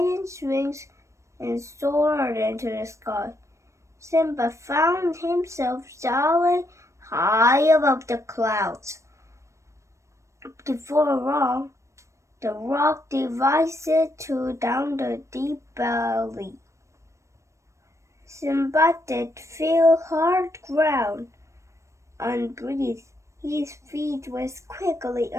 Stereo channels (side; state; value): left; late; 0.15 ms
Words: wings and soared into the sky. Simba found himself sailing high above the clouds. Before long, the rock divided down the deep valley. Simba did feel hard ground. Unbreathed, his feet was quickly